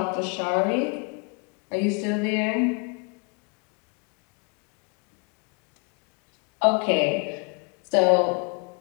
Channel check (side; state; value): right; quieter; 35.1 dB